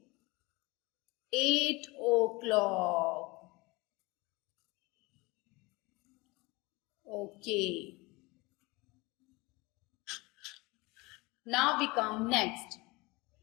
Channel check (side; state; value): right; quieter; 24.1 dB